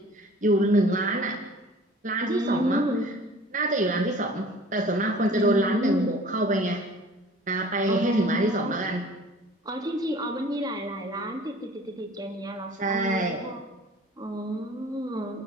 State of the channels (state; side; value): normal; both; correlation 0.48